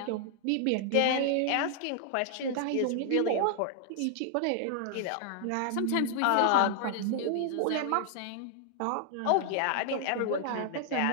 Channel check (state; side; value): different; both; correlation 0.00